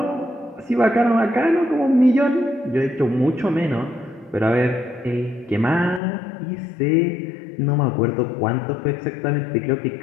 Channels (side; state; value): right; drops out; at 6.0 s